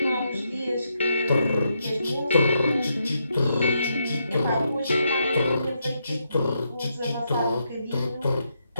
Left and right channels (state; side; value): inverted; both; correlation -0.80